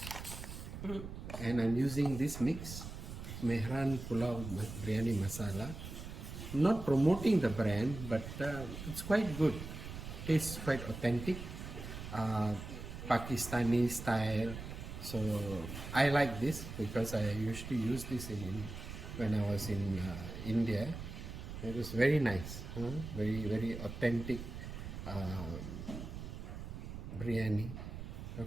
And I'm using this mix, Mehran Pulao Biryani Masala. Not promoting the brand, but it's quite good. Tastes quite authentic, Pakistani style. So I like this because I usually use this when I was in India. It was very nice, very very authentic biryani.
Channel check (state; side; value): noise; right; rumble, 9 dB below the sound